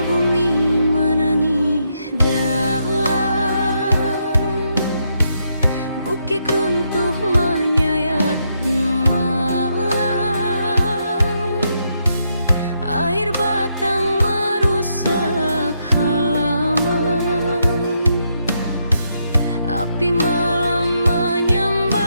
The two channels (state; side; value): inverted; both; correlation -0.79